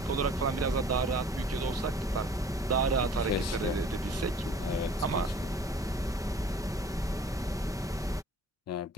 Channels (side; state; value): both; normal; correlation 0.50